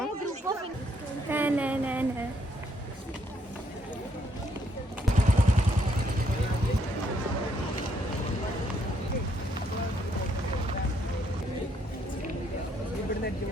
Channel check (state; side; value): normal; both; correlation 0.72